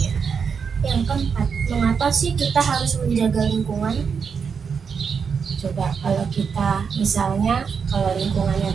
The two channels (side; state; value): left; quieter; 6.2 dB